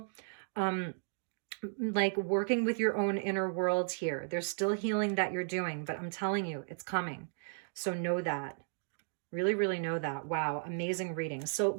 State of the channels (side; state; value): left; silent; digital silence